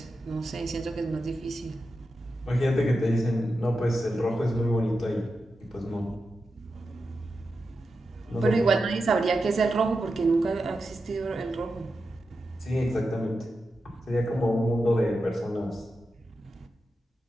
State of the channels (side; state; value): both; normal; correlation 0.90